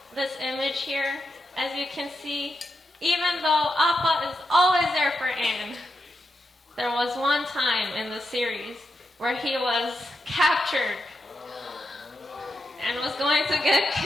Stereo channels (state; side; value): normal; both; correlation 0.86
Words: this image here. As you can see, even though Appa is always there for Aang, there was one time in the series where he was captured and was going to get